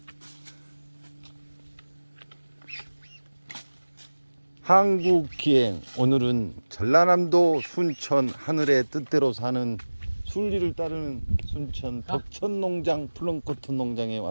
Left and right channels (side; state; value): both; inverted; correlation -1.00